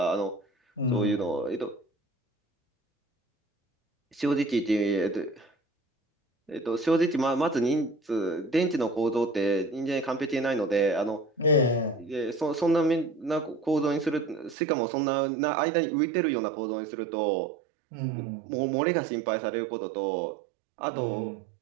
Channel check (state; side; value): drops out; left; at 14.6 s